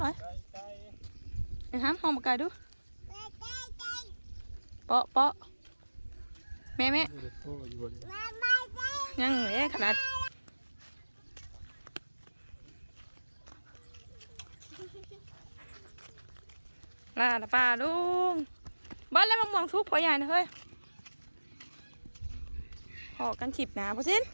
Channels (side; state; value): both; inverted; correlation -1.00